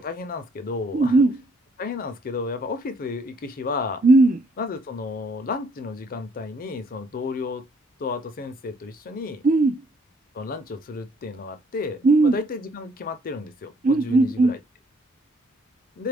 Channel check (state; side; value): normal; both; correlation 0.66